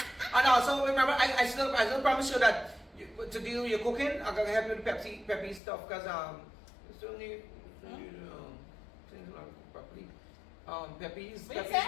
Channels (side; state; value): right; drops out; at 5.6 s